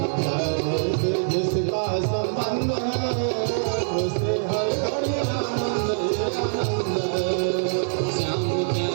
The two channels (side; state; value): left; silent; digital silence